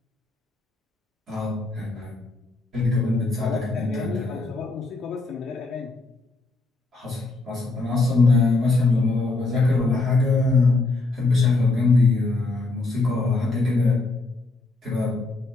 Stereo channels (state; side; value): quieter; right; 3.4 dB